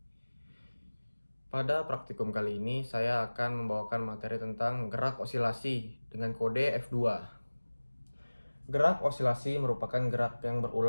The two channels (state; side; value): inverted; both; correlation -1.00